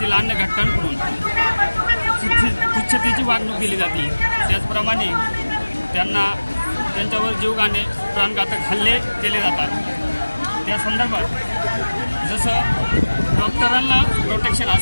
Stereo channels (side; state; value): both; inverted; correlation -1.00